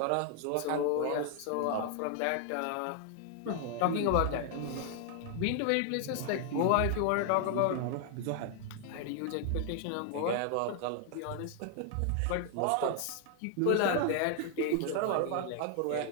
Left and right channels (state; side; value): different; both; correlation 0.00